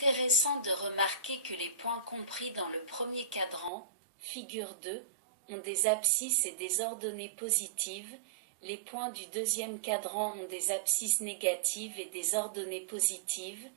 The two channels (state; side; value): drops out; left; at 3.7 s